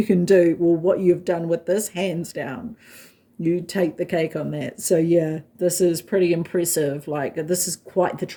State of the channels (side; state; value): both; identical; correlation 1.00